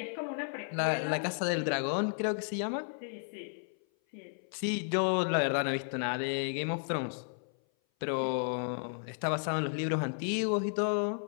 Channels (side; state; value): right; silent; 56 dB below the other